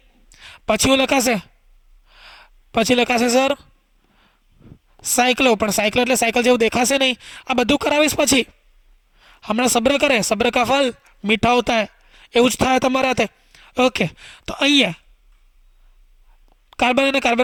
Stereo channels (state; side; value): identical; both; correlation 1.00